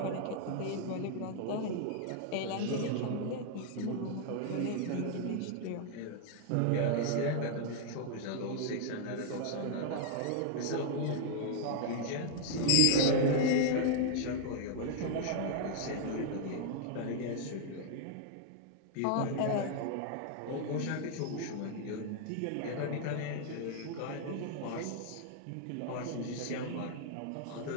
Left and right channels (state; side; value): different; both; correlation -0.01